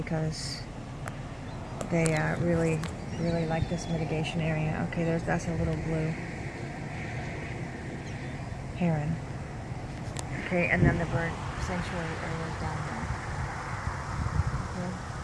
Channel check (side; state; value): both; identical; correlation 1.00